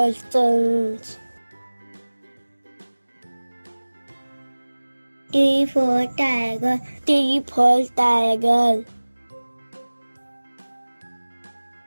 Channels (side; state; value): both; inverted; correlation -1.00